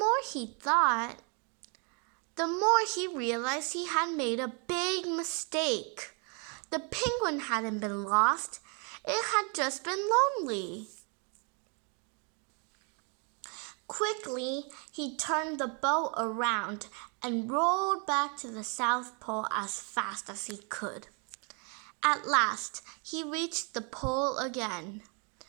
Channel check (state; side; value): quieter; left; 36.5 dB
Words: he thought, the more he realized he had made a big mistake. The penguin hadn't been lost. It had just been lonely. Quickly, he turned the boat around and rolled back to the South Pole as fast as he could. At last, he reached the pole again.